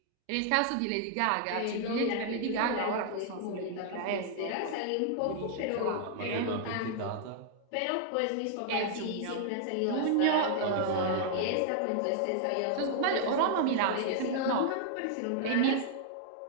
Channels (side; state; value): both; different; correlation -0.01